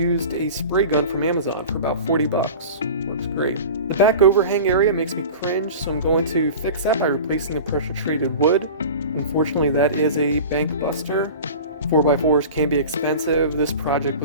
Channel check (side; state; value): both; inverted; correlation -0.36